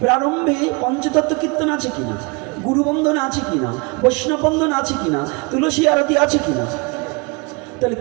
প্রারম্ভে পঞ্চতত্ত্ব কীর্তন আছে কিনা? গুরুবন্ধন আছে কিনা? বৈষ্ণব বন্ধন আছে কিনা? তুলসী আরতি আছে কিনা? তাহলে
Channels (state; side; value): quieter; left; 29.6 dB